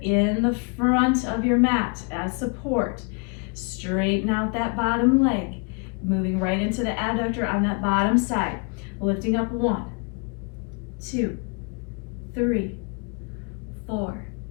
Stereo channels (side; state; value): right; quieter; 35.4 dB